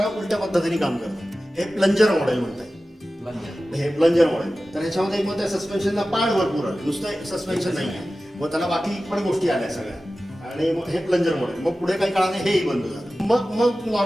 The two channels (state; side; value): normal; both; correlation 0.95